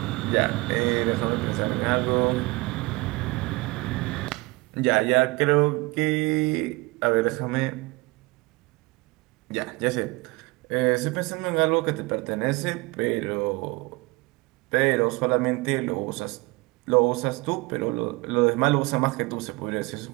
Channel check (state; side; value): quieter; left; 23.8 dB